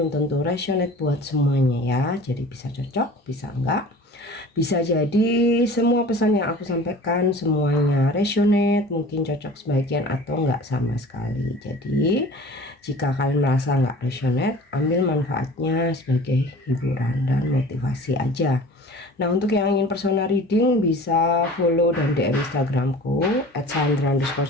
tentu resonate buat semuanya ya. Jadi bisa cocok, bisa enggak. Bisa jadi semua pesan yang aku sampaikan semuanya resonate, mungkin cocok sebagian atau enggak sama sekali. Jadi jika kalian merasa enggak resonate, ambil manfaatnya sebagai hiburan dan motivasi aja. Nah, untuk yang ingin personal reading bisa follow dan DM Instagramku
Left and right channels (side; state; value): both; normal; correlation 0.42